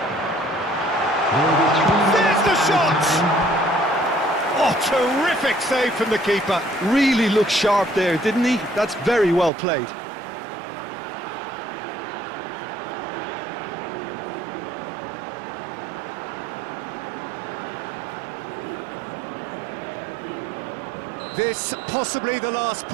There's the shot! Oh, terrific save from the keeper. Really looked sharp there, didn't he? That's very well played. This possibly the last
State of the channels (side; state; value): left; drops out; at 9.5 s